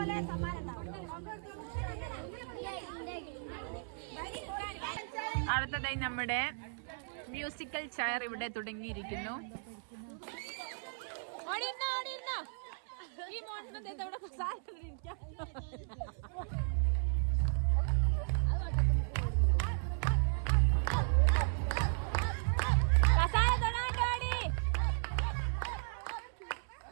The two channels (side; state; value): left; silent; 54 dB below the other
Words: അടുത്തതായി നമ്മുടെ മ്യൂസിക്കൽ ചെയർ ഇവിടെ തുടങ്ങിയിരിക്കുന്നു.